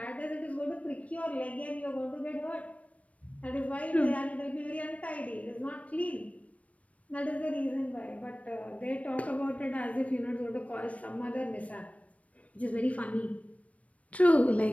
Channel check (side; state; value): right; late; 0.066 ms